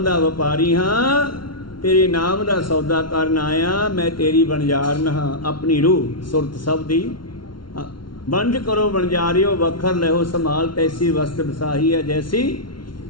दा व्यापारी हाँ, तेरे नाम दा सौदा करन आया, मैं तेरी बनजारन हाँ। अपनी रूह सुरत सब दी बंज करो बनजारियो, वखर लहो संभाल, तैसी वस्त बसाही है जैसी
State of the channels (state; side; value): late; right; 0.73 ms